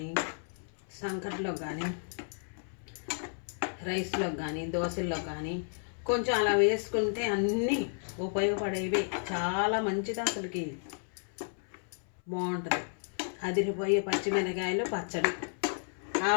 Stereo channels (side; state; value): right; silent; 56 dB below the other